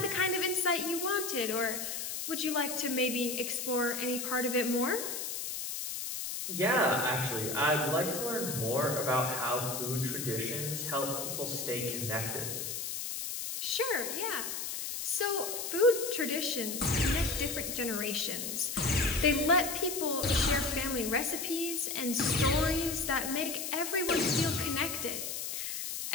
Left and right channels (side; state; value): left; noise; hiss, 4 dB below the sound